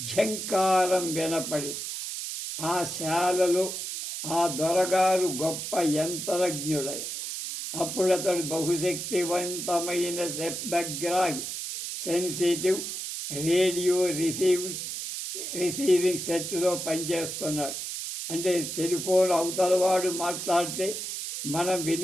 వినపడి ఆ శాలలో ఆ దొరగారు గొప్ప యంత్రజ్ఞుడై అప్పుడతడు బహుశక్తివంతమైన శబ్దగ్రాహి సెన్సిటివ్ రేడియో రిసీవింగ్ సెట్లో పనిచేస్తున్నాడు. అంటే టెలిఫోన్ అవతలవాడు మాట్లాడితే మనం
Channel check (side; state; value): right; noise; hiss, 5 dB below the sound